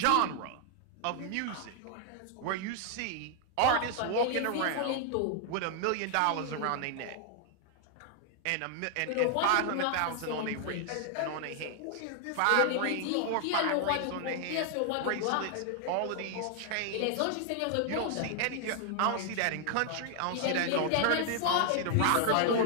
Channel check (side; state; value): both; different; correlation 0.00